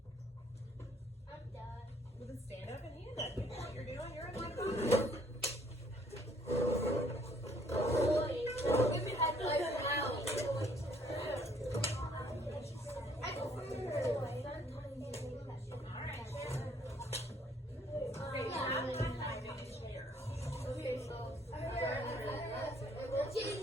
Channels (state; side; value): normal; both; correlation 0.63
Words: Well, then stand up and hand up. You know what you're doing. You're in my class.